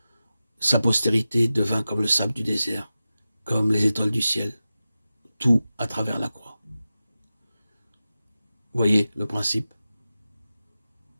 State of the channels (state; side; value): inverted; both; correlation -0.93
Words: Sa postérité devint comme le sable du désert, comme les étoiles du ciel, tout à travers la croix. Voyez le principe?